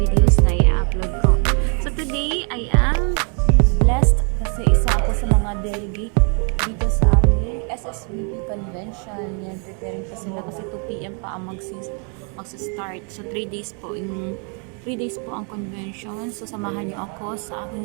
na i-upload ko. So, today, I am blessed kasi isa ako sa mga delegate dito sa aming SSVP convention. Yan, preparing pa sila kasi 2 PM pa ang magsa-start. So, 3 days po ang convention. So, samahan niyo ako sa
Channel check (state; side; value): quieter; left; 38.3 dB